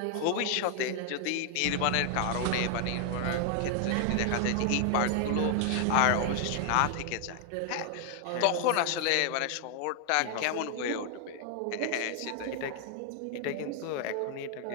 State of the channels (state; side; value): different; both; correlation 0.00